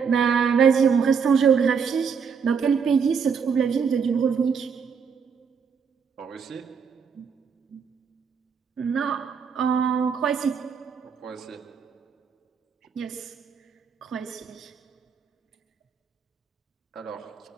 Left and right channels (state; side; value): quieter; left; 6.3 dB